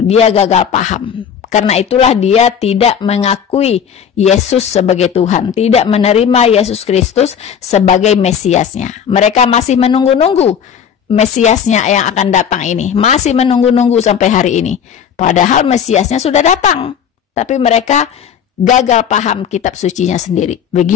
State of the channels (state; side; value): quieter; right; 7.9 dB